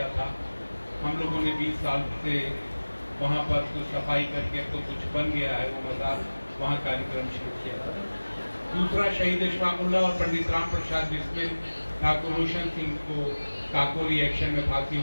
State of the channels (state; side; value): inverted; both; correlation -1.00